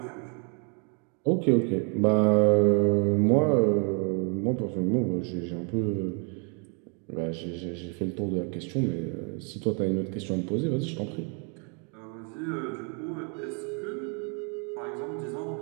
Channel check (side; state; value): left; quieter; 37.5 dB